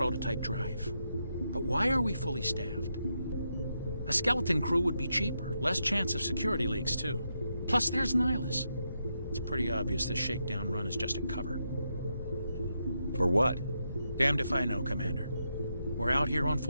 drive. But why are we fully staffed? A skeleton crew would be cheaper, less chance of security leaks, too. Plus, there's Nihilus. It's pretty obvious this shakedown run is just a cover. For what? Damned if I know, Commander. We're out here on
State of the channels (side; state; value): both; inverted; correlation -0.83